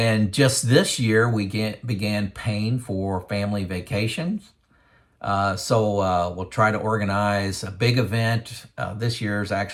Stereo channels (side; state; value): both; identical; correlation 1.00